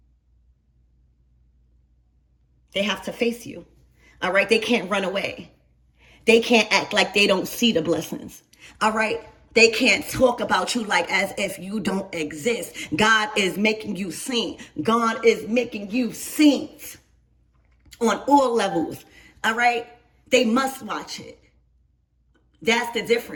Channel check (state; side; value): identical; both; correlation 1.00